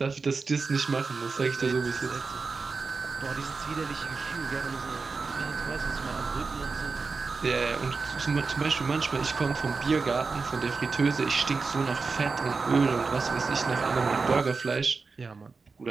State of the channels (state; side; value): quieter; left; 4.4 dB